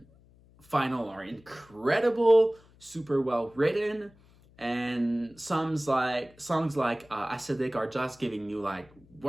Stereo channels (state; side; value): noise; left; hum, 27 dB below the sound